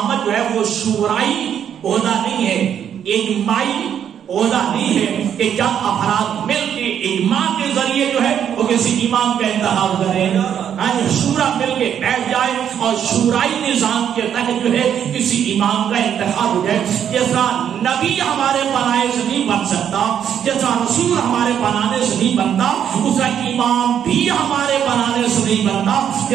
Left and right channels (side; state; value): left; quieter; 9.0 dB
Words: جو ہے وہ شورائی عہدہ نہیں ہے، اجماعی عہدہ نہیں ہے کہ جب افراد مل کے اجماع کے ذریعے جو ہے وہ کسی امام کا انتخاب کریں، شورا مل کے بیٹھ جائے اور شورائی نظام کے تحت جو ہے کسی امام کا انتخاب ہو جائے. جیسا نبی ہمارے بنائے سے نہیں بن سکتا، جیسا رسول ہمارے بنانے سے نہیں بنتا، اسا امام بھی ہمارے بنانے سے نہیں بنتا.